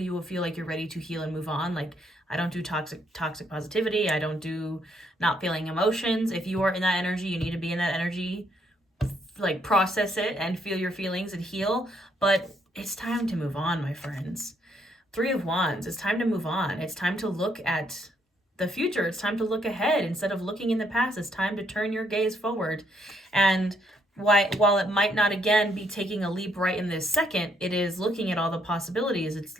will feel like you're ready to heal and move on. Like, I don't do toxic positivity. I don't do not feeling emotions. If you are in that energy, you need to be in that energy, like process it and feel your feelings and heal. But it's time to move on, my friends. Three of Wands, it's time to move on. It's time to look at the future. It's time to look ahead instead of looking in the past. It's time to turn your gaze forward. And while it might not, again, be taking a leap right in this second, it is looking at all the possibilities. It's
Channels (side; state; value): both; normal; correlation 0.72